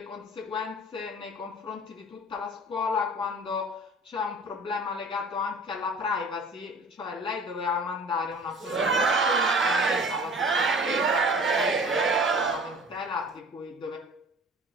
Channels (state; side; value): normal; both; correlation 0.44